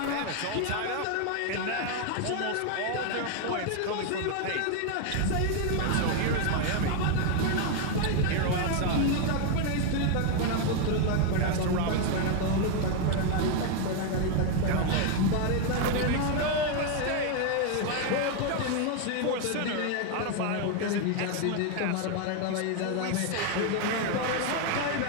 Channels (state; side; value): different; both; correlation 0.01